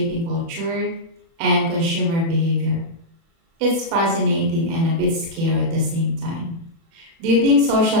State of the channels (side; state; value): left; late; 36 ms